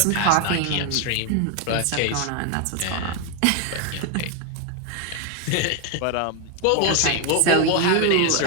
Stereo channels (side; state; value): both; different; correlation 0.01